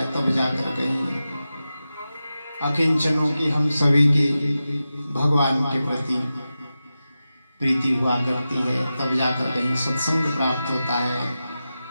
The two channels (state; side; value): inverted; both; correlation -0.93